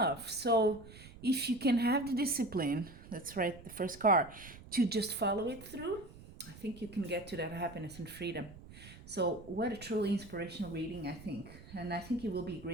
So if you can have the discipline, that's right, the first card, to just follow it through, I think you can get to that happiness and freedom. So what a truly inspirational reading, I think. And I think it will be a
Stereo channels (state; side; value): noise; right; rumble, 18 dB below the sound